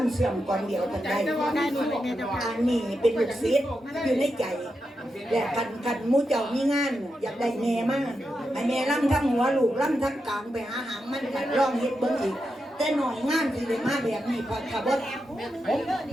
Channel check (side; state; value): both; normal; correlation 0.87